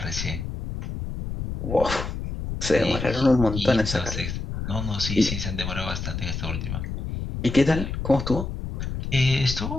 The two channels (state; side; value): noise; left; rumble, 5 dB below the sound